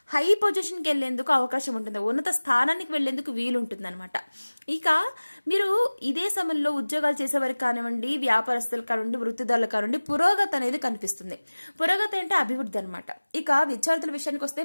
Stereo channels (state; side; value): inverted; both; correlation -1.00